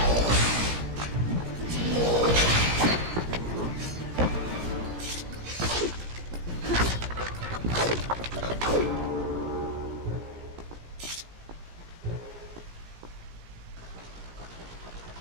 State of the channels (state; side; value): late; left; 17 ms